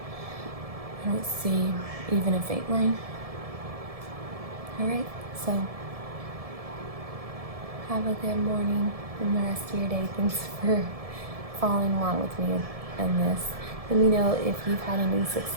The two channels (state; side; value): late; left; 1.7 ms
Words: I don't see even a faint line. Alright, so have a good morning and the rest of your day. Thanks for following along with me in this. Let me know if you've had any